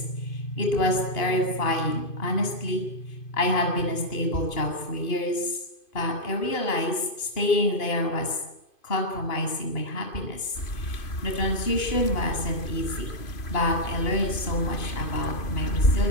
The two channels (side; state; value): right; late; 2.5 ms